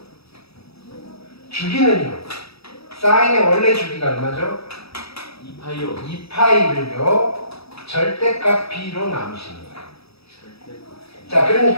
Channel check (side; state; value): right; late; 0.77 ms